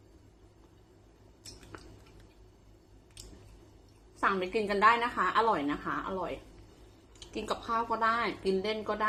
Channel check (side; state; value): both; identical; correlation 1.00